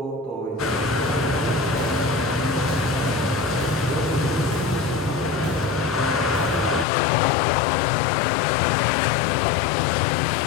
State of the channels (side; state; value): right; drops out; at 6.9 s